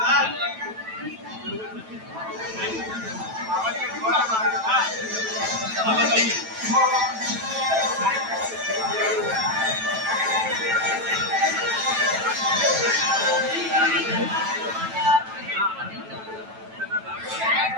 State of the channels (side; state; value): left; late; 9.1 ms